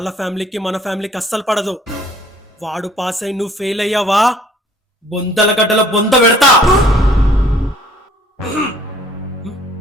ఫ్యామిలీకి మన ఫ్యామిలీకి అస్సలు పడదు. వాడు పాస్ అయి నువ్వు ఫెయిల్ అయ్యావా, బొందల గడ్డల బొంద పెడతా.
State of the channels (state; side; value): normal; both; correlation 0.57